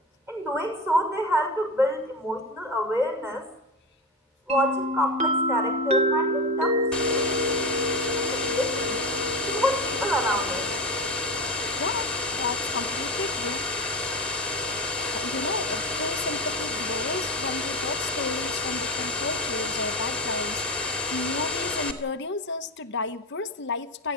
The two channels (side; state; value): both; normal; correlation 0.20